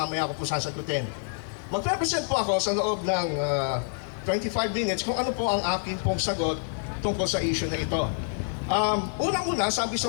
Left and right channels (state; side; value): silent; right; digital silence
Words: ko po sasagutin. Mag-represent po ako sa loob ng 25 minutes kung ano po ang akin pong sagot tungkol sa issue na ito. Unang-una, sabi